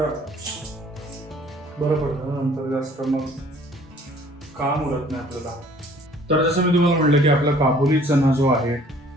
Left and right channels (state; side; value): normal; both; correlation 0.55